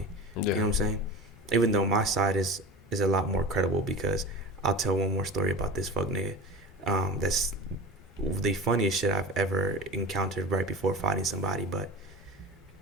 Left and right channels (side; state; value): both; normal; correlation 0.33